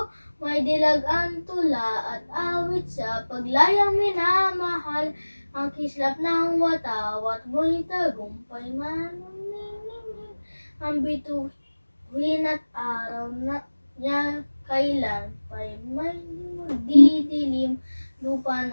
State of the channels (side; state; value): both; inverted; correlation -1.00